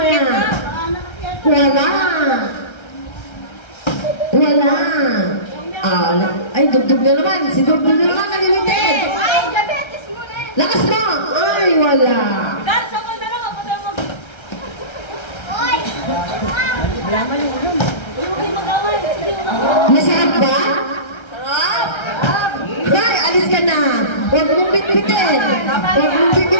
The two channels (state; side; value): late; right; 1.3 ms